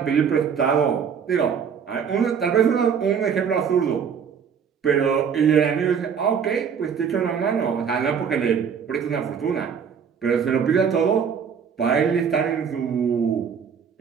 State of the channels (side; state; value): left; quieter; 7.0 dB